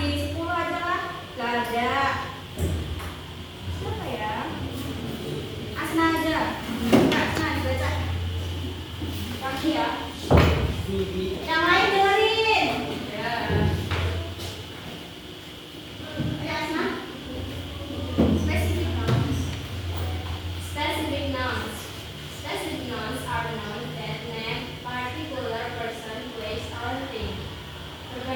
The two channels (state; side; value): identical; both; correlation 1.00